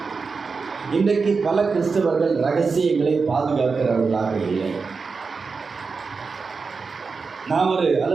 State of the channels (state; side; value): quieter; left; 4.8 dB